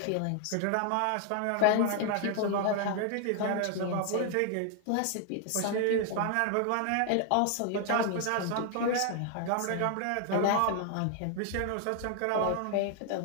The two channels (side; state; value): both; different; correlation 0.00